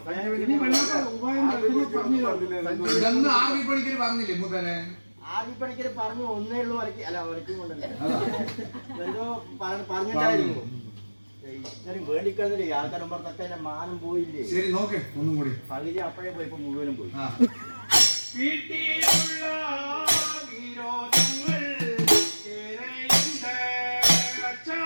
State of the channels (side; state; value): both; inverted; correlation -1.00